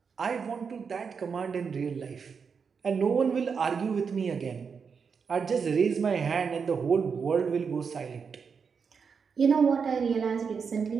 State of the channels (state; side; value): quieter; left; 5.9 dB